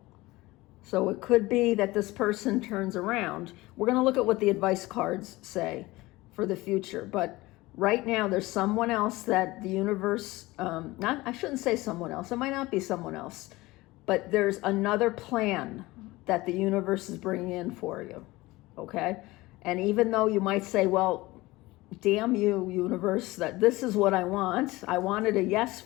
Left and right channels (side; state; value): right; quieter; 20.0 dB